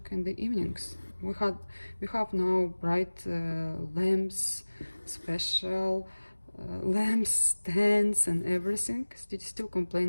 in the evenings. We have now bright lamps, special lamps, stands and everything. Still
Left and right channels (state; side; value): inverted; both; correlation -1.00